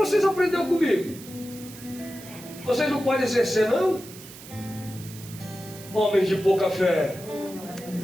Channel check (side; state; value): right; noise; hiss, 17 dB below the sound